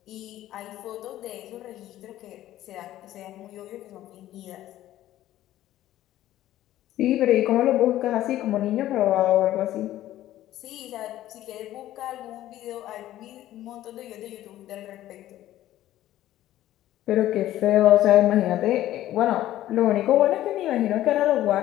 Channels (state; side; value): quieter; right; 13.8 dB